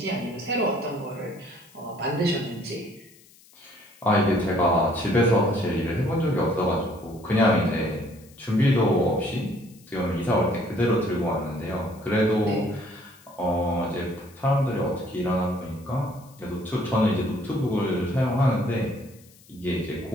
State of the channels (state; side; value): noise; left; hiss, 26 dB below the sound